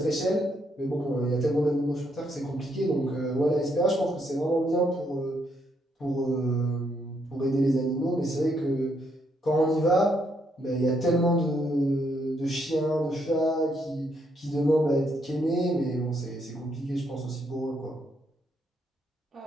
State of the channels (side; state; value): both; normal; correlation 0.75